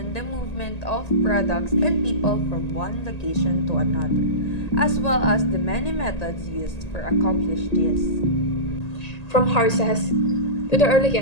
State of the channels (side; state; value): right; late; 1.8 ms